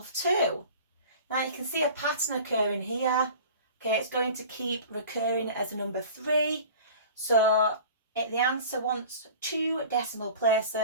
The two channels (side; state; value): both; inverted; correlation -0.41